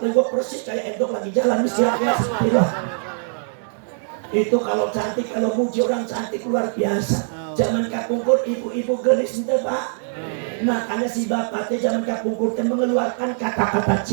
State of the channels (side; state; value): left; silent; digital silence